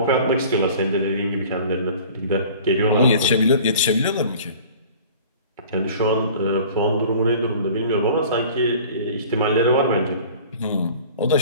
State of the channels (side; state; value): both; inverted; correlation -0.45